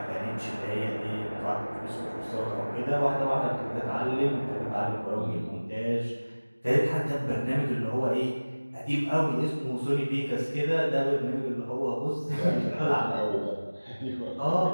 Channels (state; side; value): inverted; both; correlation -1.00